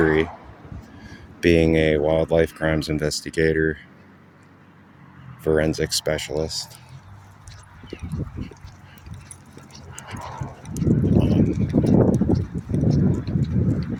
being a wildlife crimes investigator, forensic specialist,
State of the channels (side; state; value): both; identical; correlation 1.00